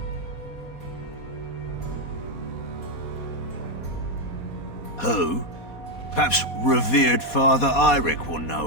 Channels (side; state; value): right; late; 4.2 ms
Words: Who? Perhaps revered Father Eirik will